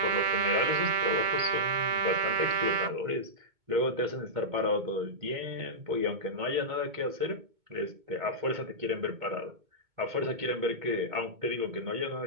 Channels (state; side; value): late; left; 2.2 ms